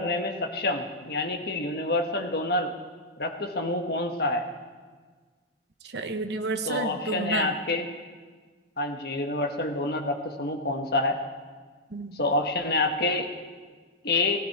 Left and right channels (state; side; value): normal; both; correlation -0.07